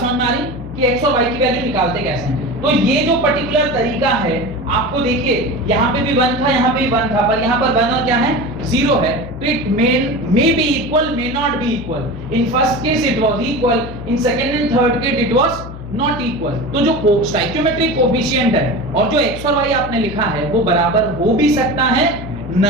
में आ रही कि x और y की वैल्यू निकालते कैसे हैं? तो ये जो पर्टिकुलर तरीका है, आपको देखिए यहाँ पे भी 1 था, यहाँ पे भी 1 था, पर यहाँ पर 1 और क्या है, 0 है। तो it may be equal, may not be equal. In first case it was equal, in second and third case it was not equal. तो जो स्टोइकियोमेट्रिक कोएफिशिएंट है और जो x और y आपने लिखा है वो बराबर हो भी सकता है,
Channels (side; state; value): left; noise; hum, 12 dB below the sound